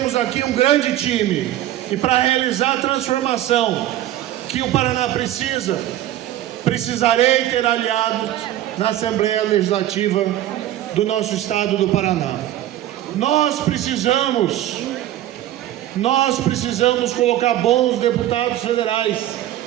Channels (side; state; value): left; quieter; 13.3 dB